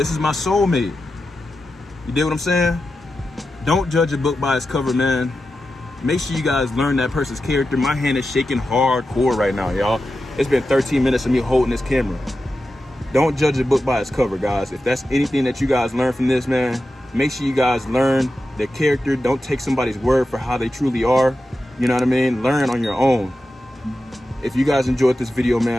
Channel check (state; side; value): normal; both; correlation 0.91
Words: is my soulmate. You dig what I'm saying? Don't judge a book by its cover, man. Make sure you guys learn that person's character. My hand is shaking hardcore right now, y'all. It's been 13 minutes of me holding this camera. Don't judge a book by its cover, guys. If that's anything that you guys learn from this, man, make sure you guys learn their character. Don't take somebody's word for how they truly are. You know what I mean? Learn on your own. If you guys enjoyed this video,